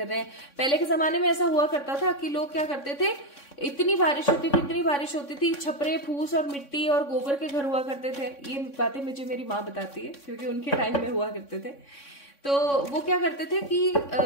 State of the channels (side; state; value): right; late; 3.6 ms